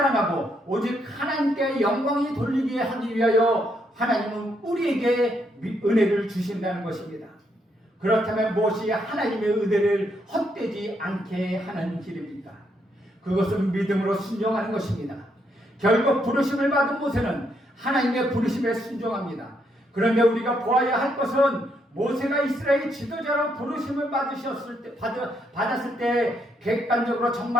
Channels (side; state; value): both; normal; correlation 0.75